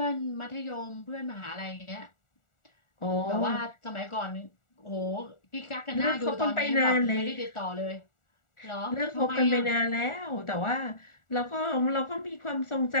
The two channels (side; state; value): right; late; 1.4 ms